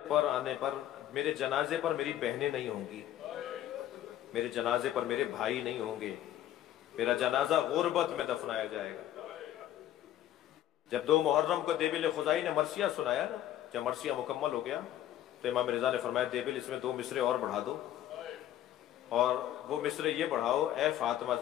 پر آنے پر، میرے جنازے پر میری بہنیں نہیں ہوں گی، میرے جنازے پر میرے بھائی نہیں ہوں گے، میرا جنازہ غربت میں دفنایا جائے گا۔ جب 2 محرم کو دیبل خزائی نے مرثیہ سنایا نا، جب مرثیہ مکمل ہو گیا تو امام رضا نے فرمایا دیبل اس میں 2 مصرے اور بڑھا دو، اور وہ مصرے یہ بڑھاؤ، اے فاطمہ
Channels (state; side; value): quieter; right; 12.3 dB